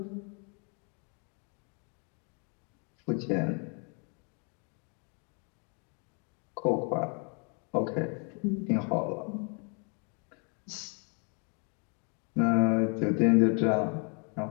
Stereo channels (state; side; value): quieter; right; 36.7 dB